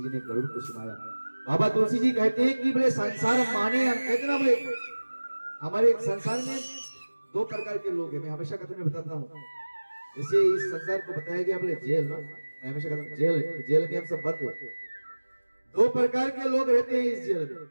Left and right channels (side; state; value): both; inverted; correlation -1.00